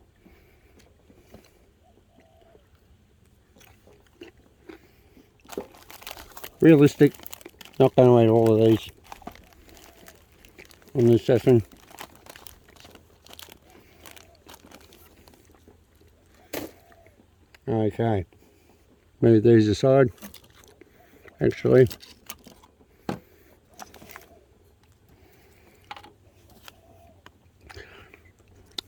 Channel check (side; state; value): both; identical; correlation 1.00